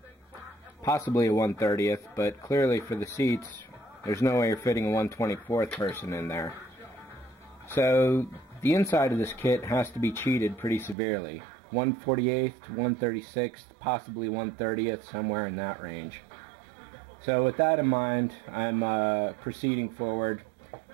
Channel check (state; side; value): drops out; left; at 11.0 s